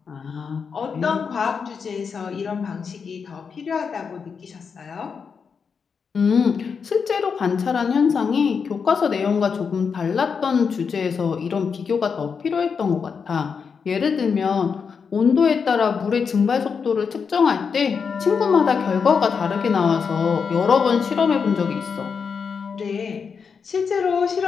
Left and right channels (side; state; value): right; quieter; 5.9 dB